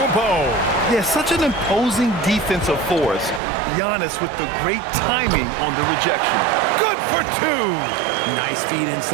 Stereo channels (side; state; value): left; drops out; at 3.4 s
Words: Yeah, such an imposing defensive force. Giannis with the great timing on the rejection. Good for 2. Nice feed